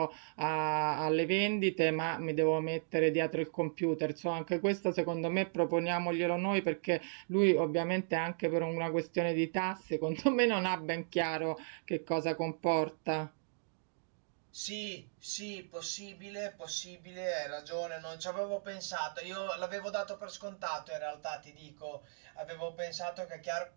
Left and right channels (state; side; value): silent; left; digital silence